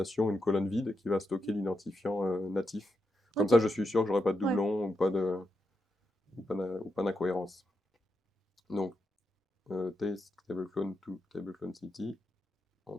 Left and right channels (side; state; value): both; normal; correlation 0.85